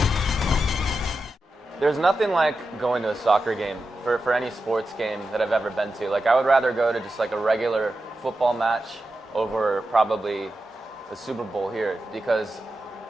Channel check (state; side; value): normal; both; correlation 0.90